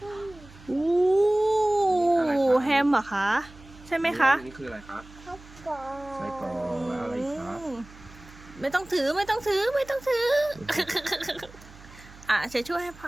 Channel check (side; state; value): right; noise; hum, 21 dB below the sound